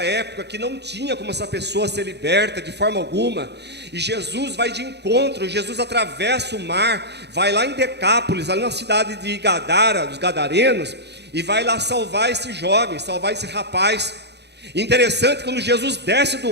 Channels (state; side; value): late; left; 0.49 ms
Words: época que não tinha como essa pessoa ser liberta de forma alguma. E Jesus vai de encontro, Jesus atravessa o mar, vai lá em Decápolis, lá na cidade de Gadara, dos Gadarenos, e vai lá salvar esse jovem, salvar esse rapaz. Interessante, quando Jesus desce do